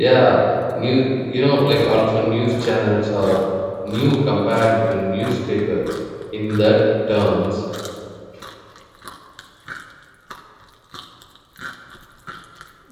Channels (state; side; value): identical; both; correlation 1.00